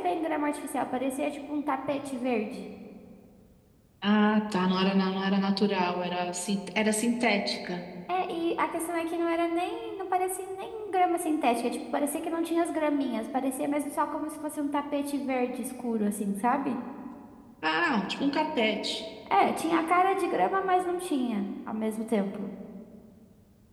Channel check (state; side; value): identical; both; correlation 1.00